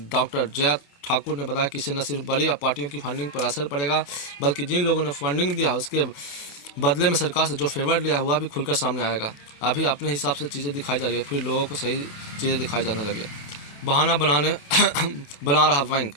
डॉक्टर जया ठाकुर ने बताया कि इससे न सिर्फ बड़ी पार्टियों की फंडिंग पर असर पड़ेगा, बल्कि जिन लोगों ने फंडिंग दिया उसके बदले में सरकार से जो फेवर लिया हुआ भी खुलकर सामने आएगा। अभी अपने हिसाब से चीज़ें दिखाई जा रही है, फिर लोगों को सही चीज़ें दिखाई जाने लगी। बहाना बना रहा बैंक,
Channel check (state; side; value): late; right; 27 ms